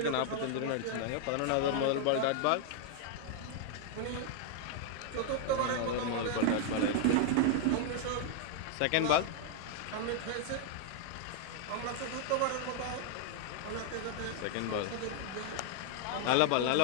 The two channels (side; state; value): both; different; correlation 0.00